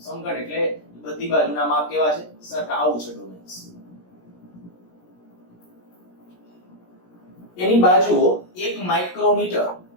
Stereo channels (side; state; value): right; late; 17 ms